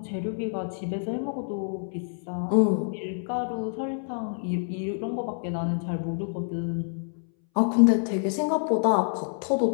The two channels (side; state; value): right; silent; 60 dB below the other